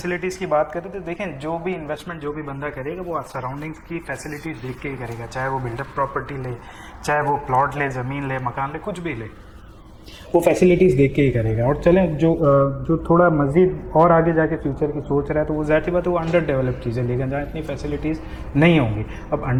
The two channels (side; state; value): both; identical; correlation 1.00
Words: की बात करें तो देखें, जो भी इन्वेस्टमेंट जो भी बंदा करेगा वो सराउंडिंग्स की फैसिलिटीज़ देख के ही करेगा, चाहे वो बिल्डअप प्रॉपर्टी ले, चाहे वो प्लॉट ले, ज़मीन ले, मकान ले, कुछ भी ले, वो फैसिलिटीज़ देख के ही करेगा। और चलें जो थोड़ा मज़ीद और आगे जाके फ्यूचर की सोच रहा है तो वो ज़ाहिर सी बात है वो अंडर डेवलप चीज़ें लेकिन जहाँ इतनी फैसिलिटीज़ नहीं होंगी। अब